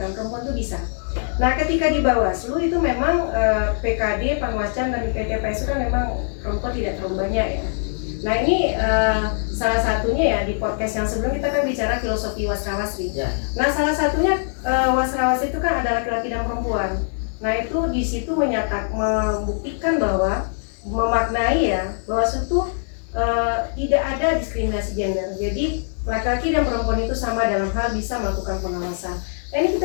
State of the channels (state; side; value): silent; right; digital silence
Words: perempuan itu bisa. Nah, ketika di Bawaslu itu memang PKD, Panwascam dan PTPS itu kan memang perempuan tidak terlalu banyak ya. Nah ini salah satunya ya di podcast yang sebelum kita kan bicara filosofi wasrawasri. Ya. Nah salah satunya wasrawasri itu kan ada laki-laki dan perempuan. Nah itu di situ membuktikan bahwa memaknai ya bahwa itu tidak ada diskriminasi gender. Jadi laki-laki dan perempuan itu sama dalam hal bisa melakukan pengawasan. Nah ini